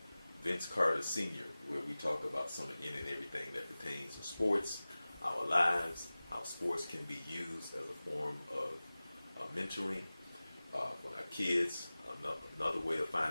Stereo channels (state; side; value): inverted; both; correlation -0.98